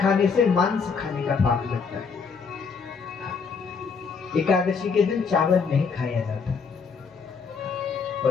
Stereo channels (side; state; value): right; quieter; 5.4 dB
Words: से मांस खाने का पाप लगता है। एकादशी के दिन चावल नहीं खाया जाता।